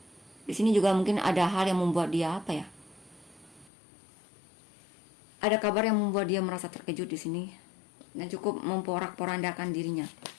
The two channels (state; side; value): drops out; right; at 3.7 s